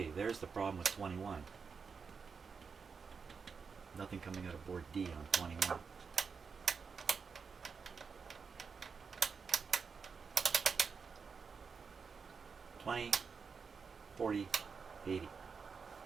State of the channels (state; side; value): quieter; left; 5.5 dB